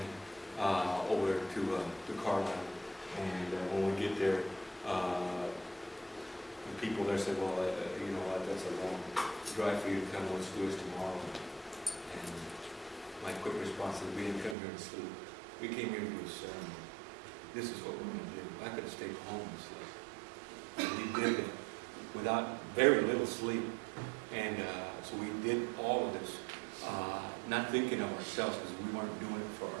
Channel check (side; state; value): left; drops out; at 14.6 s